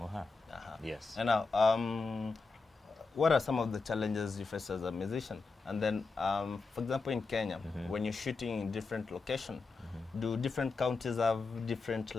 or her. Yes. And now, what are some of the challenges you face as a musician? And then, for example, in Kenya, when you're shooting in different locations, do different counties have different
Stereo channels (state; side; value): quieter; right; 4.2 dB